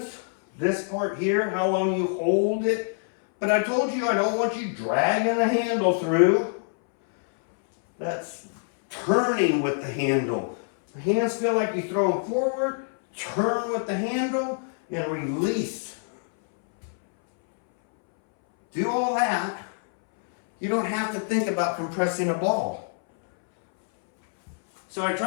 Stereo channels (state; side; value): silent; right; 62 dB below the other